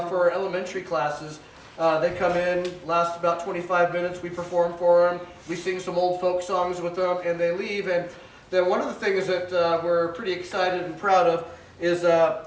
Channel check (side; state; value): both; identical; correlation 1.00